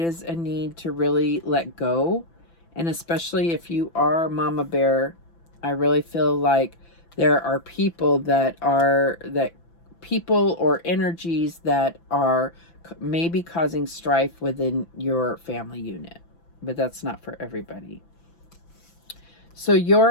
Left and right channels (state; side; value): late; right; 5.9 ms